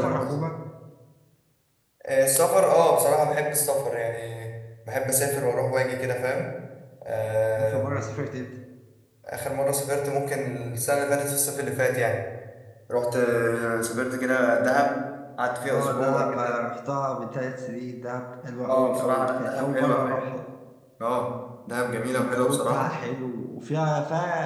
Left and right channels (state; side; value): identical; both; correlation 1.00